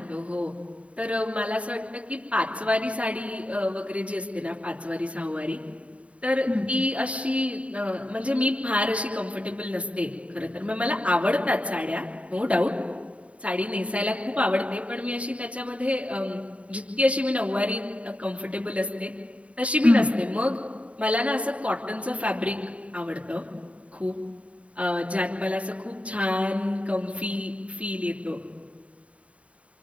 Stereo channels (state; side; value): late; left; 0.065 ms